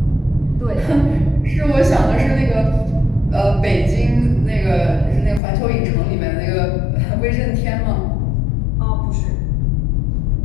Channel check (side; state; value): right; drops out; at 5.4 s